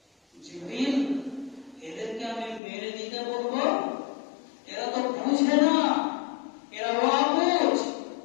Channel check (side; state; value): right; drops out; at 2.6 s